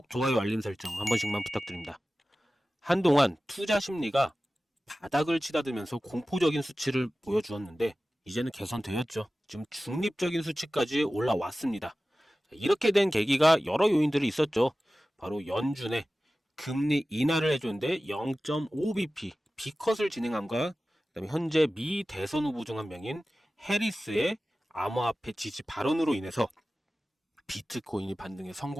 좋아요, 알림 설정 한 번씩만 부탁드립니다. 한동안 투자 심리가 바닥을 치닫으면서 공포적인 수치를 보여주었는데 이제는 개선되었죠. 지금 중립적인 수치까지 올라왔습니다. 이렇게 된 계기가 여러 요인들이 있었죠. 바로 연준의 금리 인하를 해줬는데 0.5bp B컷을 진행함과 그다음에 현재 미 대선 후보 중 한 명인 해리스의 암호화폐 지지 발언으로 인해서 비트코인이 반등에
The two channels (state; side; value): normal; both; correlation 0.96